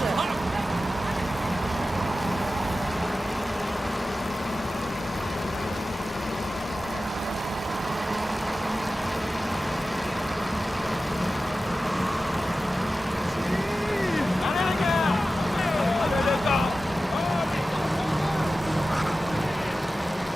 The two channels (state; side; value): normal; both; correlation 0.94